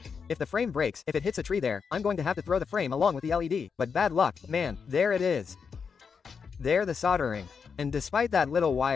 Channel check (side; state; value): right; quieter; 6.0 dB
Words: If the frame breaks, if it hits a tree there, I'm going to have to throw the frame along with the LED, but bad luck, man, there it is. There the soldering. And despite that little